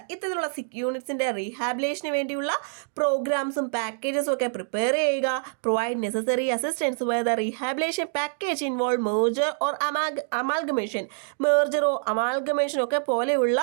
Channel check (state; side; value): silent; left; digital silence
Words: ഇത്തരത്തിലുള്ള സിക്ക് യൂണിറ്റ്സിന്റെ റീഹാബിലേഷന് വേണ്ടിയുള്ള പ്രോഗ്രാംസും പാക്കേജസും ഒക്കെ പ്രിപ്പയർ ചെയ്യുക. Provide necessary assistance where the rehabilitation package involve merger or amalgamation. മേർജറോ അമാൽഗമേഷനോ ഒക്കെ പോലെയുള്ള